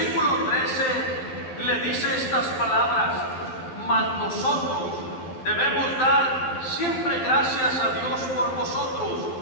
13, le dice estas palabras: mas nosotros debemos dar siempre gracias a Dios por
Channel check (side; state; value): right; late; 11 ms